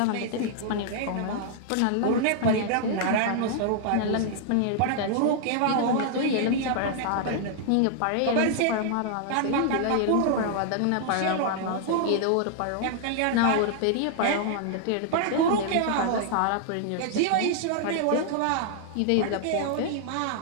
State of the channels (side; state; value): both; different; correlation -0.01